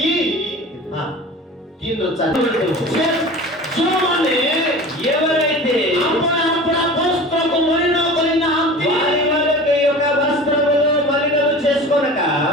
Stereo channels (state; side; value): normal; both; correlation 0.37